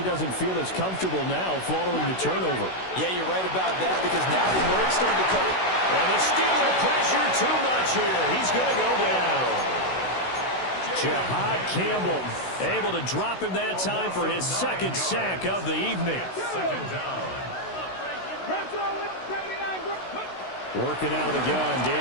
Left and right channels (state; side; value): late; right; 16 ms